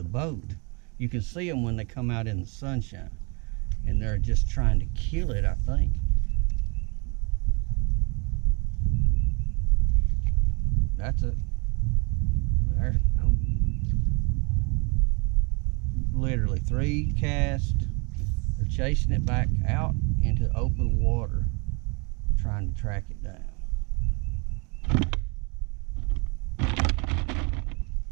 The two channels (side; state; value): left; quieter; 31.8 dB